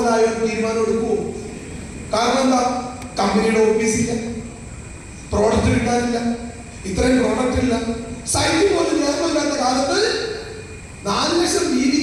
തീരുമാനം എടുക്കുമോ? കാരണം എന്താ? കമ്പനിയുടെ ഓഫീസില്ല, പ്രോഡക്റ്റ് കിട്ടാനില്ല, ഇത്രയും പ്രോഡക്റ്റ് ഇല്ല, സൈറ്റിൽ പോലും നിയമമില്ലാത്ത കാലത്ത് 4 ലക്ഷം TV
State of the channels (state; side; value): identical; both; correlation 1.00